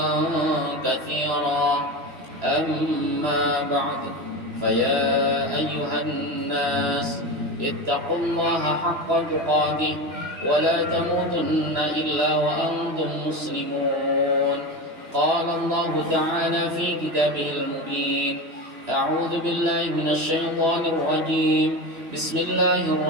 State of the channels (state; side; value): late; left; 3.0 ms